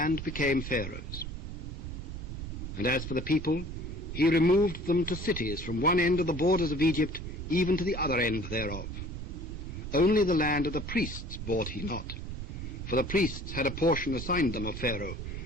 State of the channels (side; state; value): right; noise; rumble, 7 dB below the sound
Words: became Pharaoh's. And as for the people, he removed them to cities from one end of the borders of Egypt even to the other end thereof. Only the land of the priests bought he not, for the priests had a portion assigned them of Pharaoh,